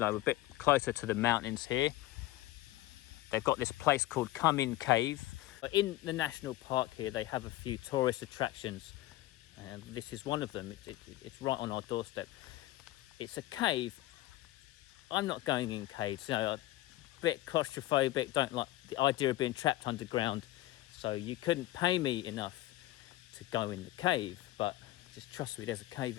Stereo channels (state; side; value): quieter; right; 16.4 dB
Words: we're a bit closer to the mountains here. They've got this place called Come In Cave. In the national park here, they have a few tourist attractions, and this is one of them. It's right on our doorstep. it's a cave. I'm not going in caves, you know, a bit claustrophobic, don't like the idea of being trapped underground. So you couldn't pay me enough to go in the cave, but just trust me, there's a cave